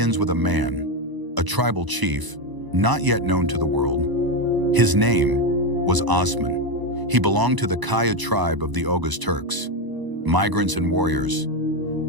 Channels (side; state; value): left; late; 1.0 ms